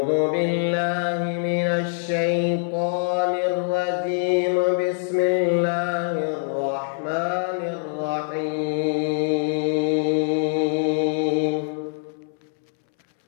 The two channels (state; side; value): silent; right; 63 dB below the other